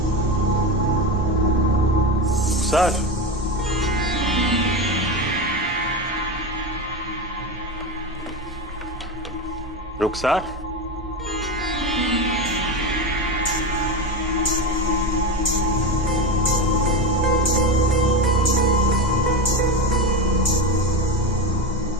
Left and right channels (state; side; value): normal; both; correlation 0.19